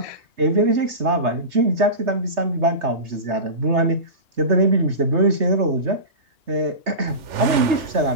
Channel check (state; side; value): late; left; 3.4 ms